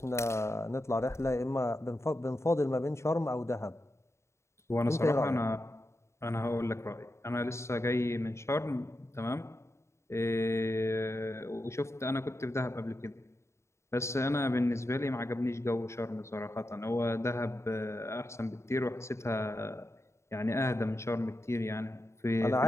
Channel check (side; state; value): right; late; 0.13 ms